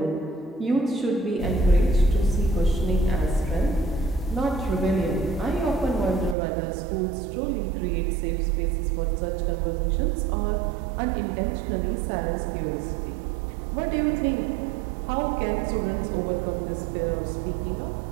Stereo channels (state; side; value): drops out; left; at 6.4 s